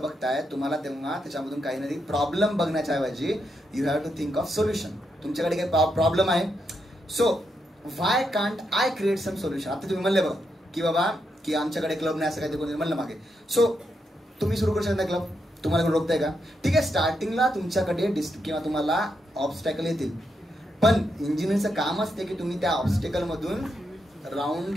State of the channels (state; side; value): normal; both; correlation 0.82